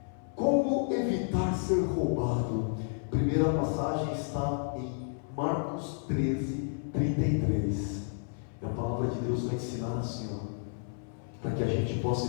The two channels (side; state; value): right; silent; 57 dB below the other